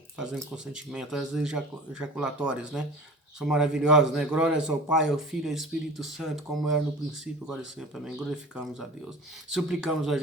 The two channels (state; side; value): normal; both; correlation 0.38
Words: fazendo consentimento, as ejaculatórias, né? São maravilhosas, né? Glórias ao Pai, ao Filho e ao Espírito Santo, como era no princípio, agora e sempre. Amém. Glorificamos a Deus. Suplicamos a